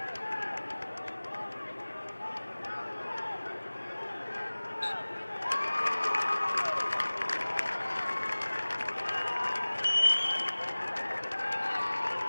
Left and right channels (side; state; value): both; inverted; correlation -1.00